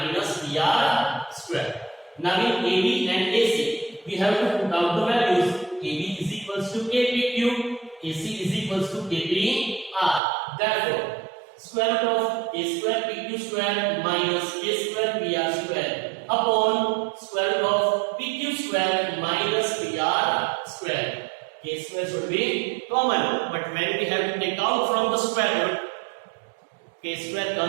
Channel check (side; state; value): left; drops out; at 10.2 s